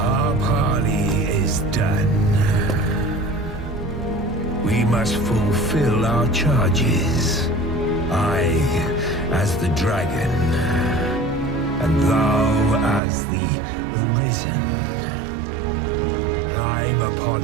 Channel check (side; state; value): left; drops out; at 13.0 s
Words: parley is done. We must fulfill our charges. I, as the dragon, and thou as the Arisen. Climb upon